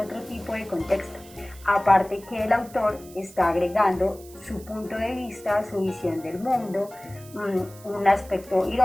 tipo de contexto, aparte que el autor está agregando su punto de vista, su visión del mundo, un aspecto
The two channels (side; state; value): right; noise; hiss, 21 dB below the sound